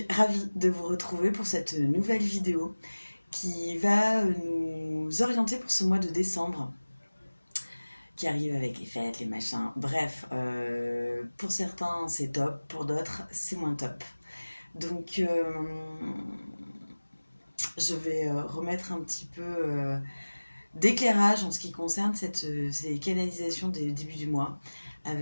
ravie de vous retrouver pour cette nouvelle vidéo qui va nous orienter pour ce mois de décembre qui arrive avec les fêtes, les machins. Bref, pour certains c'est top, pour d'autres c'est moins top. Donc je vais remettre un petit peu d'éclairage en ce qui concerne ces canalisations des débuts du mois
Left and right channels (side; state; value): both; inverted; correlation -1.00